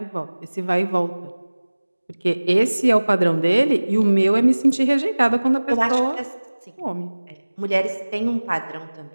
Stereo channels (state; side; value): inverted; both; correlation -1.00